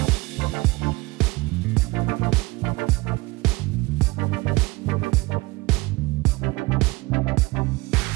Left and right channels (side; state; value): left; quieter; 22.5 dB